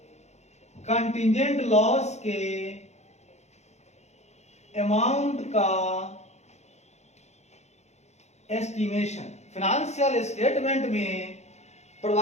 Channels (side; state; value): right; late; 0.32 ms